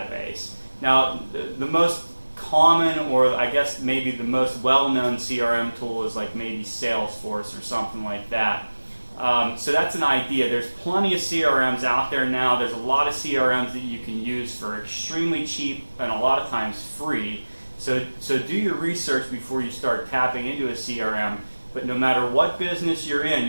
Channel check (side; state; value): both; inverted; correlation -1.00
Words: Now, the most common, or I guess maybe the most well-known CRM tool is like maybe Salesforce or something like that. So that's an idea. There's plenty of CRMs out there now. There's a lot of CRMs that you can use for extremely cheap and a lot of times free. So do your research before you start tapping into a CRM. But no matter what business you're in,